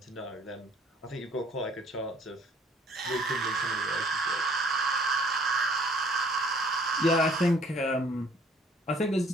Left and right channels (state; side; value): normal; both; correlation 0.58